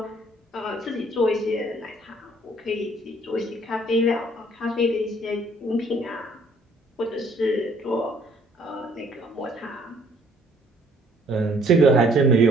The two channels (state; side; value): normal; both; correlation 0.61